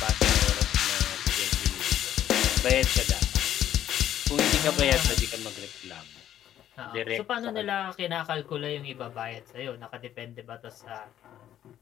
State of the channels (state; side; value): quieter; right; 11.3 dB